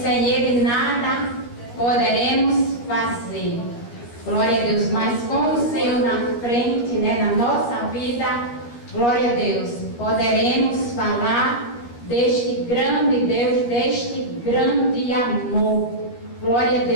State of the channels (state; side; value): late; right; 13 ms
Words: Ele nada poderemos fazer. Glória a Deus. Mas com o Senhor na frente, né, na nossa vida, glória a Deus, poderemos falar deste grande Deus, deste grande amor. Glória a